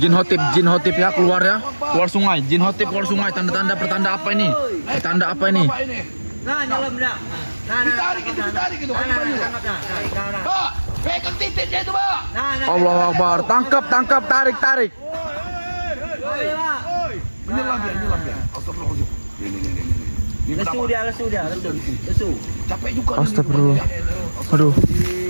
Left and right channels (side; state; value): both; inverted; correlation -1.00